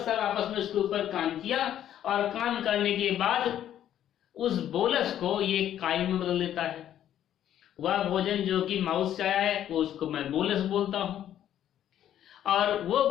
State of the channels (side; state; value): right; quieter; 11.0 dB